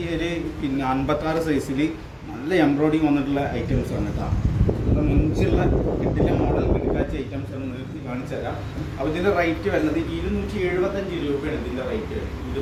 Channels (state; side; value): identical; both; correlation 1.00